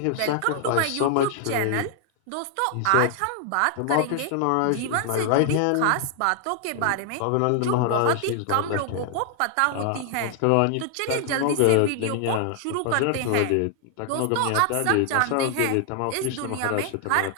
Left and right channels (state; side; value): different; both; correlation 0.00